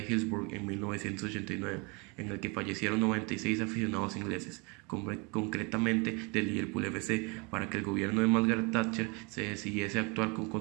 en 1989, en el que fallecieron 96 aficionados ingleses, concretamente del Liverpool FC, para que el gobierno de Margaret Thatcher se decidiese a actuar con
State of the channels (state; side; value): quieter; left; 30.2 dB